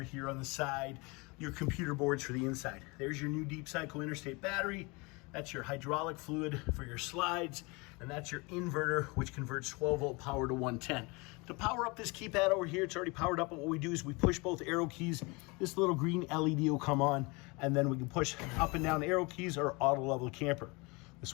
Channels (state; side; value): quieter; right; 27.1 dB